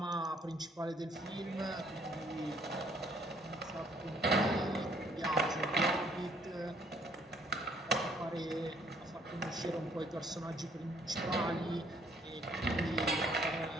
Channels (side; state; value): both; normal; correlation 0.64